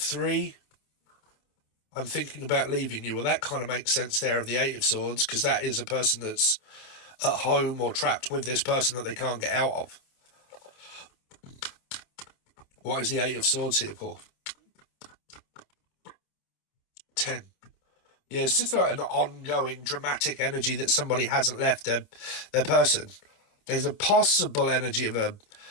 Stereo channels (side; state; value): right; late; 27 ms